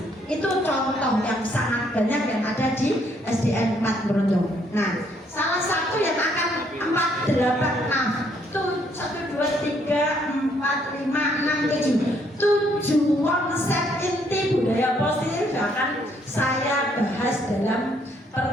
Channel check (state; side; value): normal; both; correlation 0.69